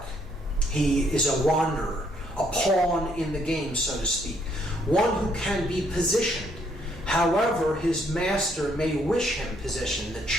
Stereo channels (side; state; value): both; normal; correlation 0.69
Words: He is a wanderer, a pawn in the game, so to speak. One who can be positioned. However, his master may wish him positioned, the